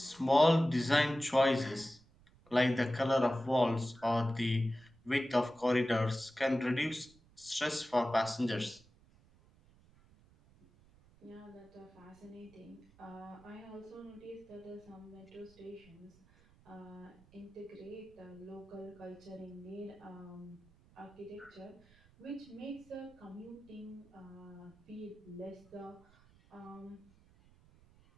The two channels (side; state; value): right; noise; rumble, 27 dB below the sound